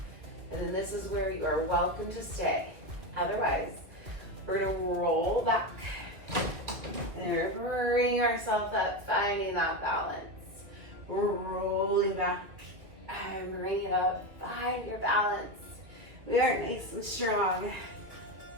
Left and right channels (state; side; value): late; left; 2.5 ms